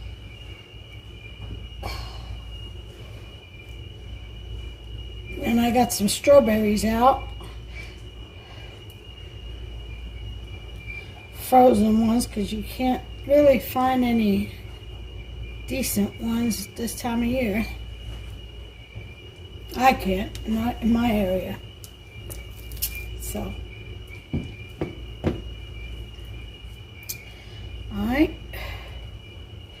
And I got some strawberries out. Frozen ones, because you can't really find any decent ones this time of year. I can't, not in my area. So, alright.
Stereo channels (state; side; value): identical; both; correlation 1.00